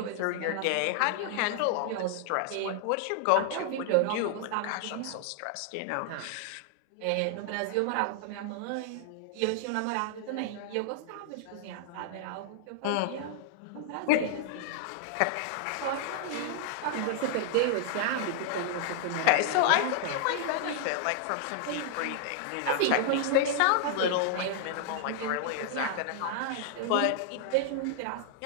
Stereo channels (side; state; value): both; different; correlation 0.00